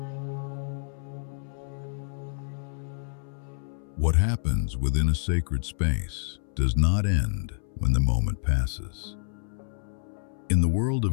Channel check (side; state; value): right; silent; 59 dB below the other